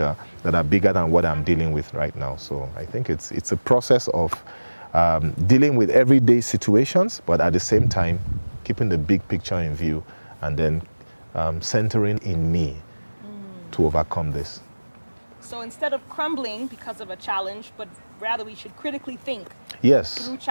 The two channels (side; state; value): both; inverted; correlation -1.00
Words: that are bigger than what I'm dealing with right now. So I think it's a process of dealing with everyday situations, but at the same time, keeping the big picture in view, and then centering in me to overcome this. So instead of crumbling because of a challenge, but rather we should critically think through